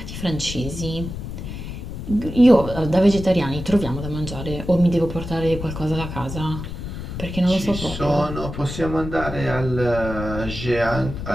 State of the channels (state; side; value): noise; left; rumble, 8 dB below the sound